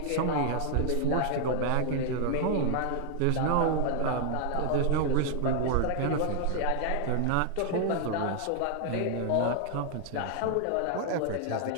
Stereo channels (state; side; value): different; both; correlation 0.00